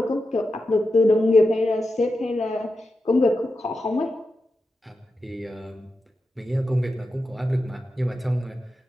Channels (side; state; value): both; normal; correlation 0.89